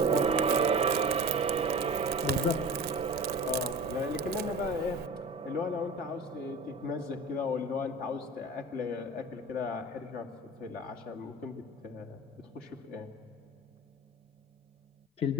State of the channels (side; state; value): both; normal; correlation 0.35